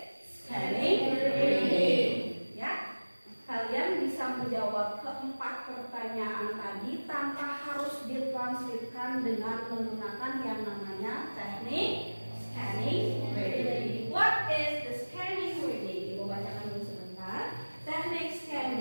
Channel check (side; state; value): both; inverted; correlation -1.00